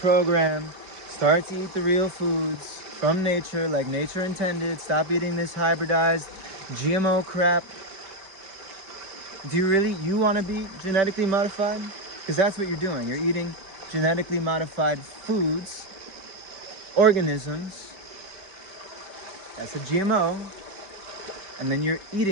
Start to eat the real foods from nature, like nature intended. Stop eating this hybridized GMO crap. Do you want to be genetically modified? Because that's what you're doing. You're eating genetically modified foods, organisms. That's a GMO. And then you're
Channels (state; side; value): late; left; 5.1 ms